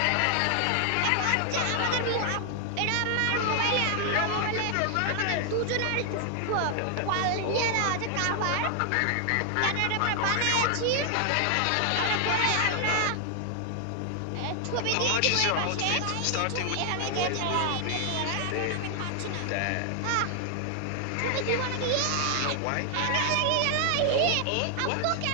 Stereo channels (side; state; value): both; different; correlation 0.00